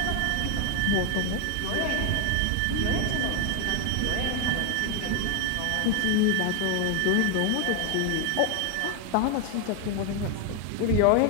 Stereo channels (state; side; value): different; both; correlation 0.00